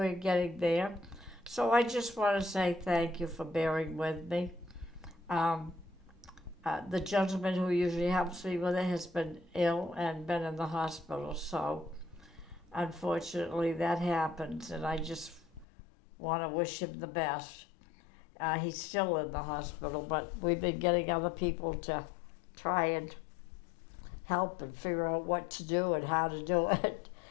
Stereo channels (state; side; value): drops out; right; at 15.7 s